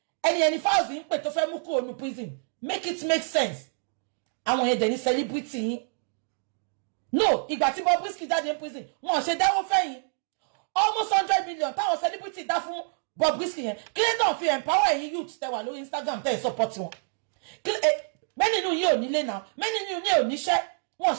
Ẹni Falz ń pè tó fẹ́ mú kúrò ní prison. Make it make sense. Àwọn yẹn dẹ̀ ní celebrity yín. No, ìgbà tí Bobrisky jáde ní prison, wọ́n ṣe dáwó fẹ́yìn. Almost 100 million táwọn celebrity dá fún Bobrisky yẹn. Kílẹ̀ fi empower ẹ̀yin youth tẹ́ wà lórí Instagram tẹ́ support wọn. Many nínú yín ò nílé náà. Many nínú yín ò níṣẹ́. Wọ́n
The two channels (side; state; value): left; silent; digital silence